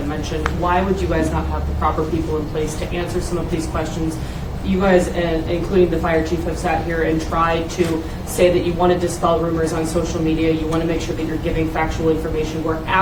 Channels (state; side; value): identical; both; correlation 1.00